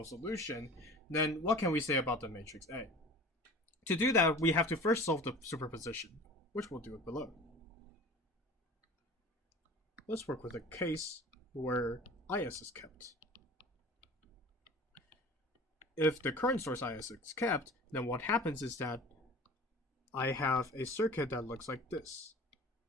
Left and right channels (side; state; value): both; normal; correlation 0.40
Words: solution, then what can we say about the matrix A? To do that, we have to first solve the superposition, which we'll do it below. Let's work with a case where IS is kept. If the current source IS is kept, then what happens is that I have a circuit that looks like this.